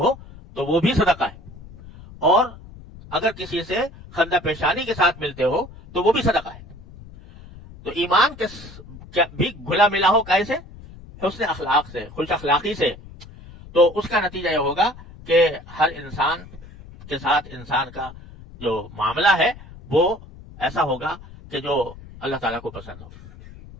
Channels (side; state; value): left; noise; rumble, 18 dB below the sound